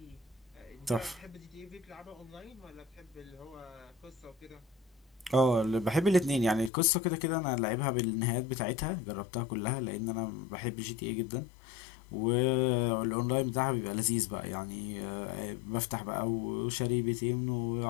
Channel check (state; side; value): drops out; right; at 6.7 s